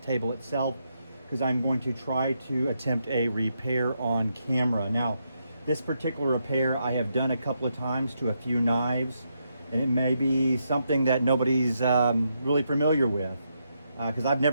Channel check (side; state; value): both; inverted; correlation -0.81